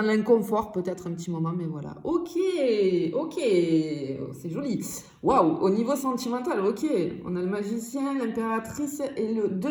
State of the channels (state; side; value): identical; both; correlation 1.00